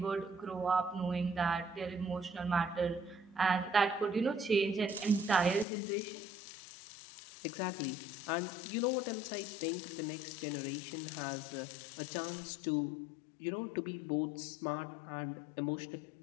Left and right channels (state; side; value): drops out; right; at 5.7 s